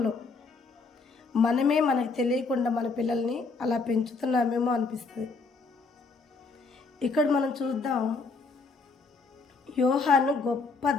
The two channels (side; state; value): right; quieter; 4.1 dB